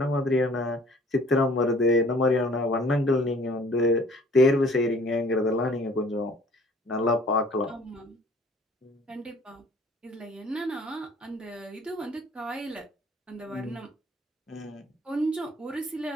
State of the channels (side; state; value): both; normal; correlation 0.54